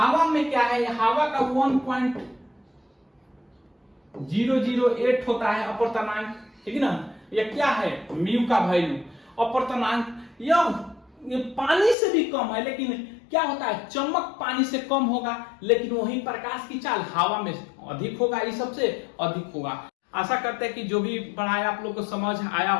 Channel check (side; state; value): right; drops out; at 12.0 s